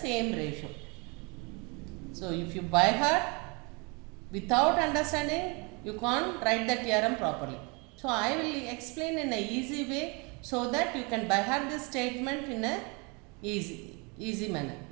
ratio. So if you by heart, without understanding, you can't write the theorem properly. So I will explain in a easy way, so that you can by heart this statement in a easy manner.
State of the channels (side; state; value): left; quieter; 30.0 dB